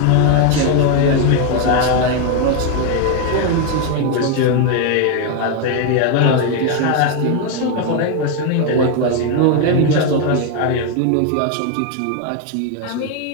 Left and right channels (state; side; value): different; both; correlation 0.01